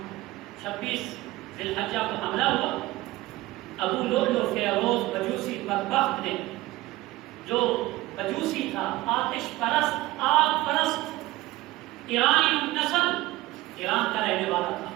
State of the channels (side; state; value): left; quieter; 18.3 dB